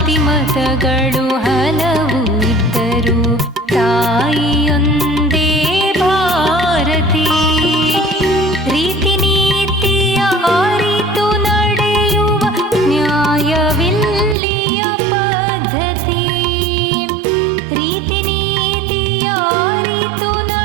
ಮತಗಳು ಹಲವು ಇದ್ದರೂ ತಾಯಿಯೊಂದೇ ಭಾರತಿ. ರೀತಿ ನೀತಿಯ ಅರಿತು ನಡೆಯುವ ನ್ಯಾಯವಿಲ್ಲಿಯ ಪದ್ಧತಿ. ರೀತಿ ನೀತಿಯ ಅರಿತು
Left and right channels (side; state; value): left; drops out; at 14.4 s